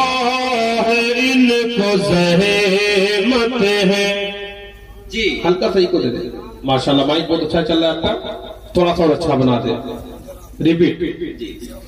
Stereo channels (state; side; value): identical; both; correlation 1.00